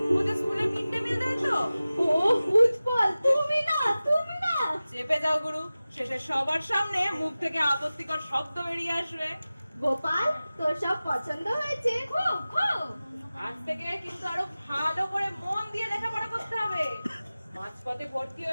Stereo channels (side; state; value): both; inverted; correlation -0.97